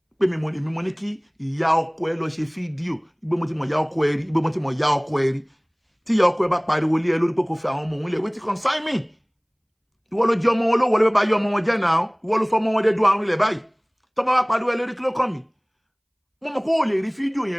Pé mi mo ní kí ìyá ọkọ ẹ lọ ṣe fídíò. Igbe mo ti mọ̀ ìyá ọkọ ẹ rí, igbe mo ti mọ̀ ìyá ọkọ ẹ rí. Tí ìyá ọkọ ẹ bá pariwo lé ẹ lórí pé kó fẹ́ àwọn ọmọ òun lẹ̀, wetin concern me? Ìwọ ló jẹ́ ọmọ wọn ló wọlé bá yọ ọmọ wọn jẹ́ náà. Ìwọ ló sọ ọmọ wọn dé dùn àrùn ilẹ̀ báyìí. Tó bá wá pariwo ẹ lórí kí ló kàn mí? Mo mọ̀ kó o lè rí fídíò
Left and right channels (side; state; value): both; identical; correlation 1.00